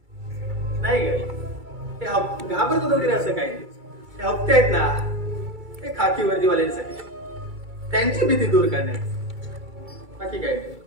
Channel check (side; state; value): left; late; 2.3 ms